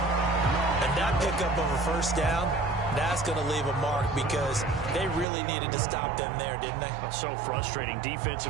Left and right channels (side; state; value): left; drops out; at 5.2 s